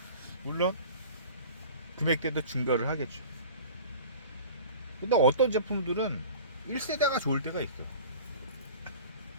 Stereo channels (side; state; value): both; inverted; correlation -0.40